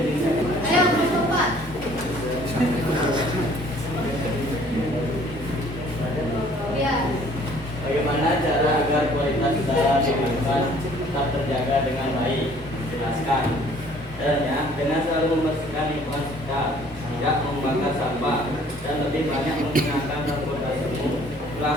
Ayo kelompok 4. Ya. Bagaimana cara agar kualitas udara di lingkungan tetap terjaga dengan baik? Jelaskan. Caranya dengan selalu membersihkan lingkungan sekitar, tidak membakar sampah, dan lebih banyak menggunakan transportasi umum,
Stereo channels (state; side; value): normal; both; correlation 0.56